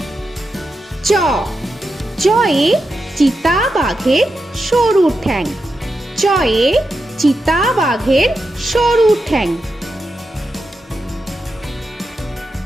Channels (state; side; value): normal; both; correlation 0.88